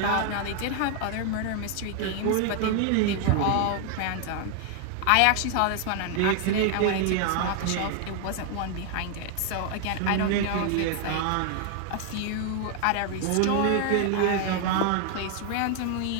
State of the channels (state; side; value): different; both; correlation 0.00